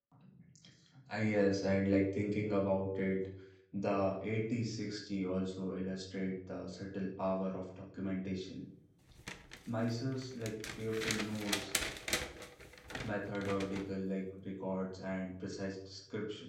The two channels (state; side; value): identical; both; correlation 1.00